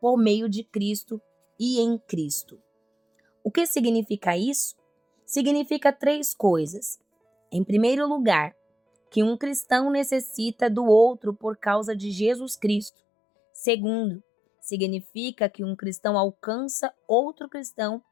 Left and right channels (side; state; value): right; drops out; at 12.9 s